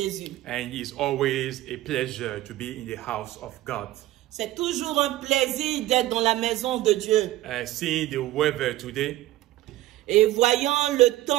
And it's always a pleasure to be in the house of God. C'est toujours un plaisir d'être dans la maison de Dieu. Seeing the weather today, Et voyant le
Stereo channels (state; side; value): quieter; left; 15.8 dB